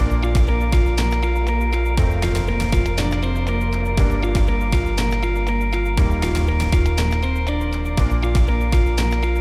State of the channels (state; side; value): identical; both; correlation 1.00